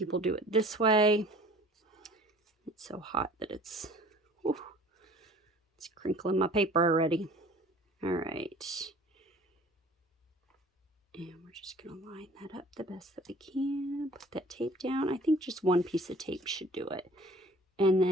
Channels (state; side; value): normal; both; correlation 0.49